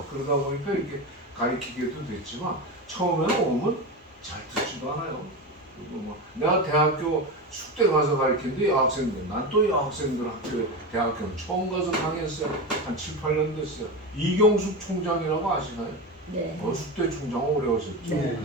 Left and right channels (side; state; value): both; normal; correlation 0.20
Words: 그러다 보니까 이렇게 가르치게도 됐지만 처음에는 오면 잘 듣지도 않아요. 내가 대학교 숙대 가서 가르치는데 여학생들, 난 또 여학생들 대학교는 처음 가서 강의했어요. 한 7, 8년 됐어요. 이경숙 총장이라고 아시나요? 네. 숙대 총장 오래 하셨죠.